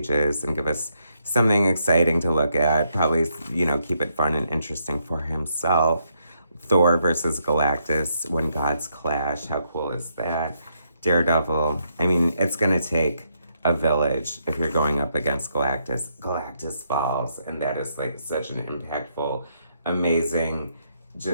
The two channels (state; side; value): inverted; both; correlation -0.76